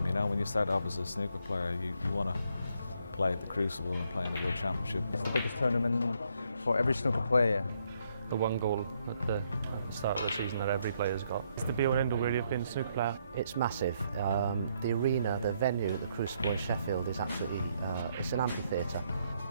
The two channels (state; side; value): inverted; both; correlation -0.73